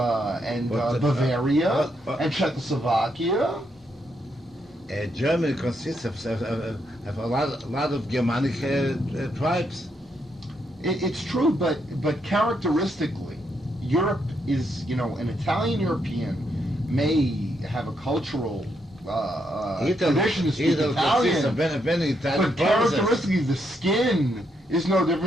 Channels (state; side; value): normal; both; correlation 0.78